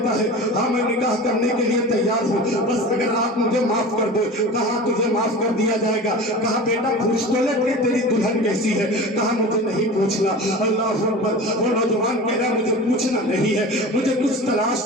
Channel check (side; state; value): both; normal; correlation 0.34